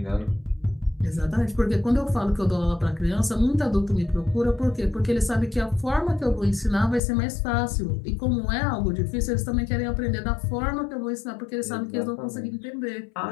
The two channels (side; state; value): right; drops out; at 7.0 s